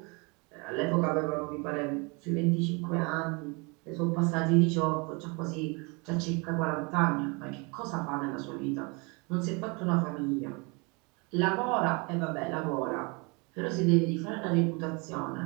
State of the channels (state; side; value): quieter; left; 30.1 dB